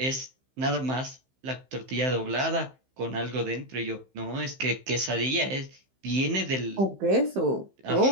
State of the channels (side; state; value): left; late; 15 ms